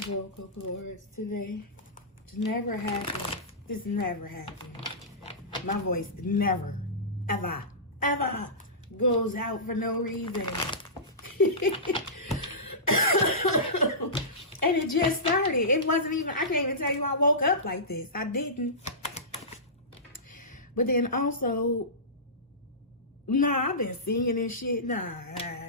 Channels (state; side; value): normal; both; correlation -0.19